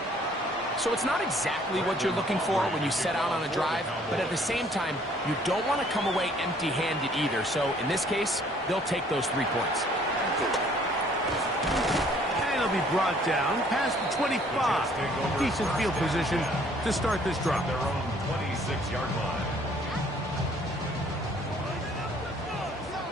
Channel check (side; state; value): both; normal; correlation 0.59